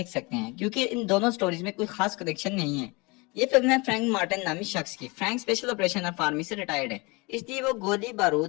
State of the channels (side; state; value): right; quieter; 26.9 dB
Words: सकते हैं, क्योंकि इन दोनों स्टोरीज में कोई खास कनेक्शन नहीं है। ये फिल्म है फ्रैंक मार्टिन नामी शख्स की। Frank special operation of army से रिटायर्ड है, इसलिए वो गोली